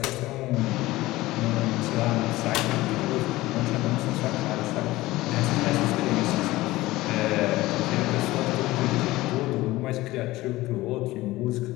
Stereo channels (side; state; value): right; quieter; 18.2 dB